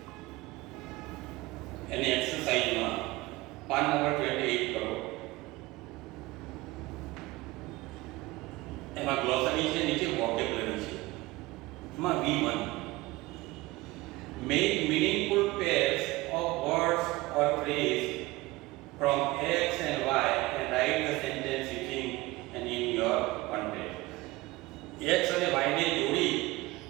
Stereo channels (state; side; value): quieter; left; 20.0 dB